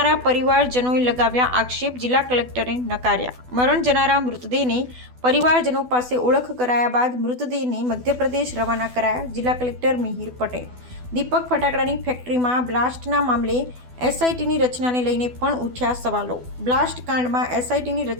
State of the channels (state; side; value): late; left; 12 ms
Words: પરિવારજનોએ લગાવ્યા આક્ષેપ, જિલ્લા કલેક્ટરે નકાર્યા। મરણ જનારા મૃતદેહને પરિવારજનો પાસે ઓળખ કરાયા બાદ મૃતદેહને મધ્યપ્રદેશ રવાના કરાયા। જિલ્લા કલેક્ટર મિહિર પટેલ દીપક ફટાકડાની ફેક્ટરીમાં બ્લાસ્ટના મામલે એસઆઈટીની રચનાને લઈને પણ ઉઠ્યા સવાલો। બ્લાસ્ટ કાંડમાં એસઆઈટીની